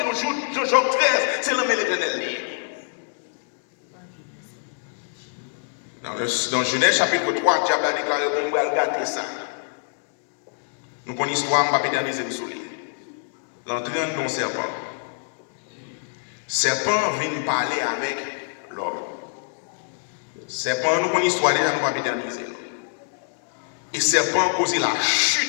nous, Job 13, c'est l'homme de l'Éternel. Dans Genèse chapitre 3, le diable a déclaré qu'on va regarder ça. Nous connaissons l'histoire, on ne va pas éterniser le soleil. L'entrée dans le serpent. Serpent vient parler avec l'homme. Serpent, nous connaissons l'histoire déjà, nous ne va pas éterniser. Et serpent a causé la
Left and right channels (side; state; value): right; silent; digital silence